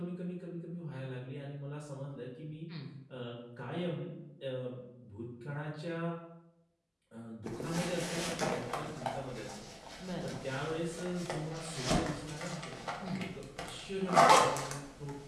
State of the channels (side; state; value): both; identical; correlation 1.00